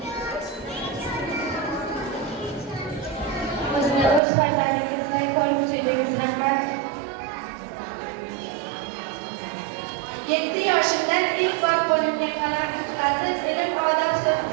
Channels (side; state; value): left; drops out; at 4.2 s